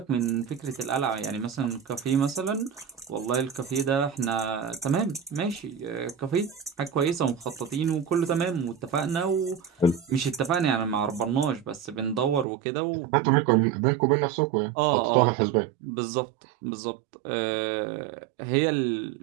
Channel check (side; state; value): left; drops out; at 12.5 s